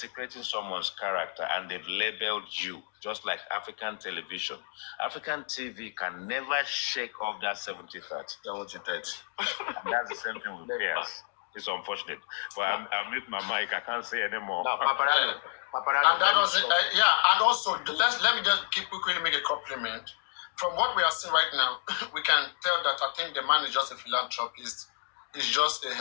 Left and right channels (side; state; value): right; silent; digital silence